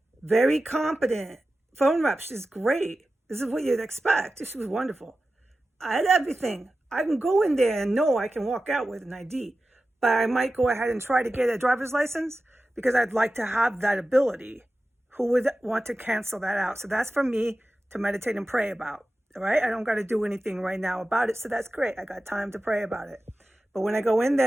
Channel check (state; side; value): normal; both; correlation 0.94